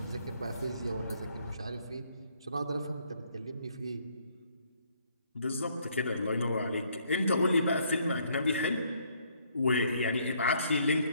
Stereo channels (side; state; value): both; inverted; correlation -0.67